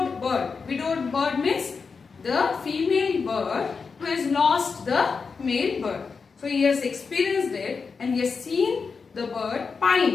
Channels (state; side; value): quieter; right; 5.1 dB